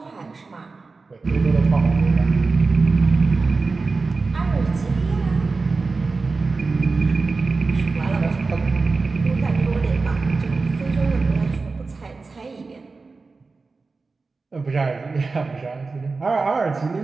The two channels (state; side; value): quieter; left; 4.0 dB